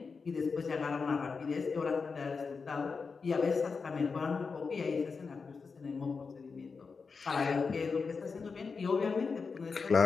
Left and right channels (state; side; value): quieter; right; 4.9 dB